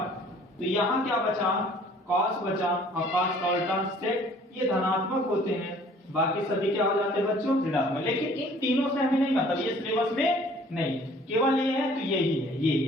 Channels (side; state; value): both; normal; correlation 0.54